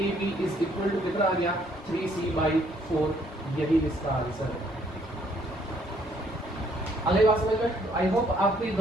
is equal to कितना आ गया 3C/4। यही इसका आंसर है। अगली बात समझ में, आई होप आपको ये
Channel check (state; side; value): normal; both; correlation 0.65